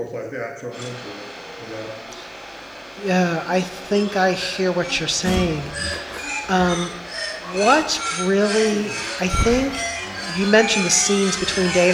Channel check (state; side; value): identical; both; correlation 1.00